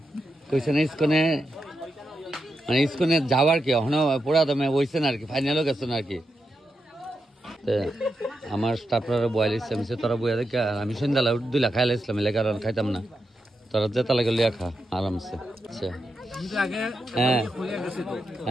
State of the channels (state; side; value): normal; both; correlation 0.86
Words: কইছে না ইস্কনে, মানে ইস্কনে যাওয়ার কি এখনো পুরা দমে হইছে না আর কি, ফাইনালও গেছে না আর কি। আমার স্টাফরা বয়াল ইসলাম তোরা বইয়া দেখ, আমি সন্ধ্যালা 2 লাখ খাইলে ইসলাম এলে, কারণ খাইতাম না। তোরা যেতে লাগে লিয়া খা আরামসে। আচ্ছা হ্যাঁ